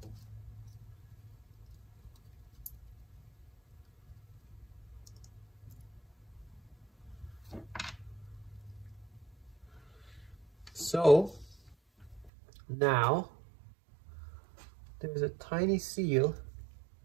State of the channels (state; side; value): drops out; left; at 12.3 s